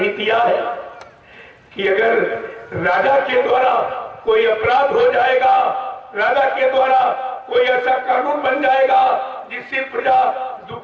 दिया है कि अगर राजा के द्वारा कोई अपराध हो जाएगा, राजा के द्वारा कोई ऐसा कानून बन जाएगा जिससे प्रजा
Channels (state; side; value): identical; both; correlation 1.00